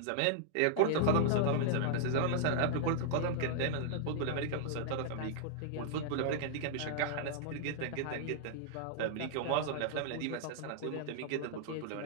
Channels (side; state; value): both; different; correlation -0.01